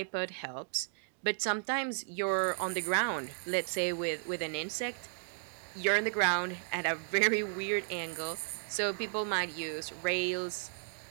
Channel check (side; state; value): left; silent; digital silence